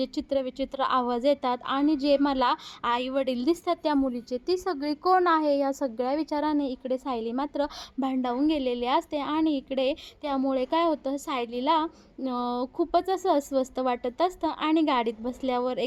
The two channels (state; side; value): identical; both; correlation 1.00